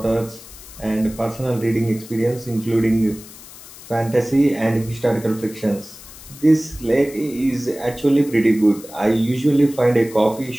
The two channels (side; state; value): left; noise; hiss, 18 dB below the sound